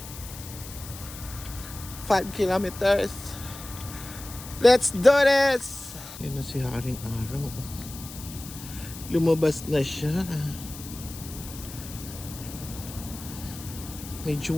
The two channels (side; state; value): left; noise; hiss, 13 dB below the sound